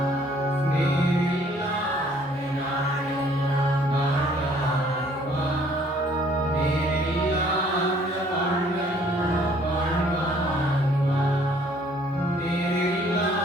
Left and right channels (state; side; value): normal; both; correlation 0.60